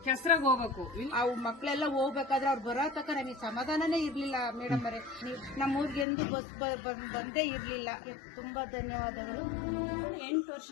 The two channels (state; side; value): drops out; right; at 6.1 s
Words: ಕೆಸರಾಗ ಹೋಗ್ಬೇಕು. ಅವು ಮಕ್ಕಳೆಲ್ಲ ಹೋಗ್ಬೇಕಾದ್ರೆ ಅವ್ರು ಬರೋ ತಕ್ಕ ನಮಗೆ ಸಮಾಧಾನನೇ ಇರ್ಲಿಲ್ಲ ಮೇಡಮ್ ಅವರೇ. ನಮ್ಮ ಊರಿಗೆ ಎಂದು ಬಸ್ ಬಂದೇ ಇರ್ಲಿಲ್ಲ. ತುಂಬಾ ಧನ್ಯವಾದಗಳು. 8 ವರ್ಷ